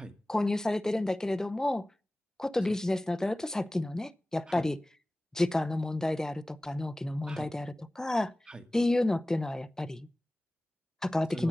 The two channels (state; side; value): normal; both; correlation 0.98